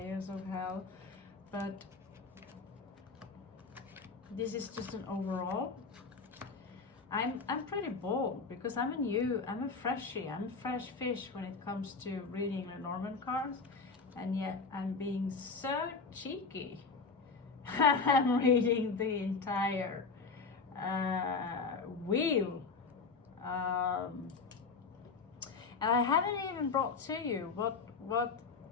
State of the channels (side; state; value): right; quieter; 4.6 dB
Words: of hell, but this is just an overall. I'm pretty bold because I'm a freshie, I'm a fresh fish when it comes to reading Lenormand cards, and yet I'm being so cheeky. I'm reading the entire wheel. And I haven't even brought to you what